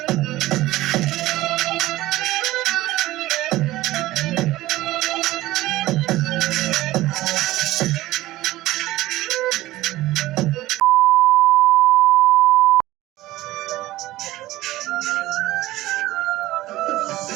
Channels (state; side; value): quieter; left; 16.8 dB